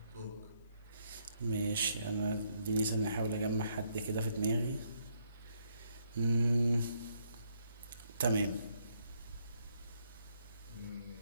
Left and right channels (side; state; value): both; inverted; correlation -0.73